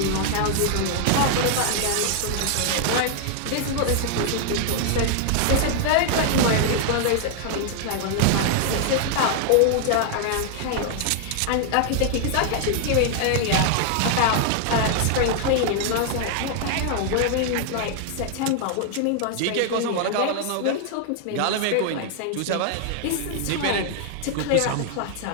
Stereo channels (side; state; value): both; different; correlation 0.00